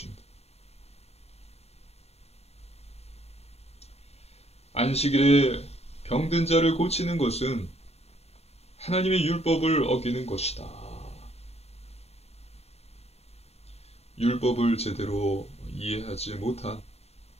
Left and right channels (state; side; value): late; right; 0.30 ms